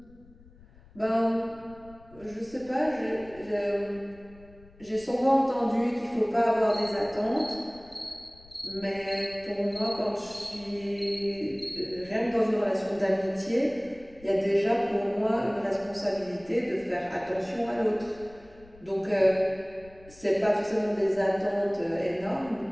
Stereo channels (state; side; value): noise; left; rumble, 24 dB below the sound